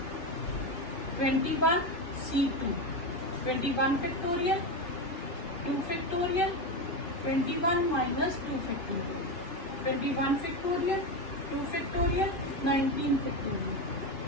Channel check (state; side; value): late; right; 2.5 ms